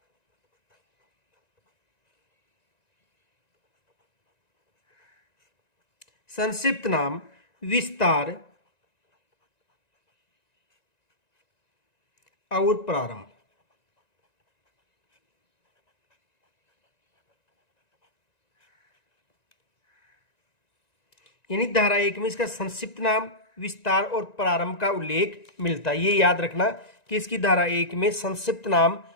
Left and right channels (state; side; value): late; right; 1.9 ms